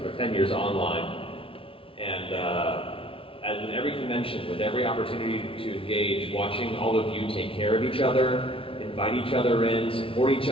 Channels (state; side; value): late; right; 0.26 ms